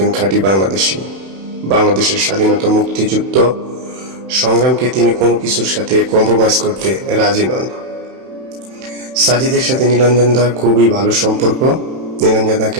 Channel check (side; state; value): left; late; 31 ms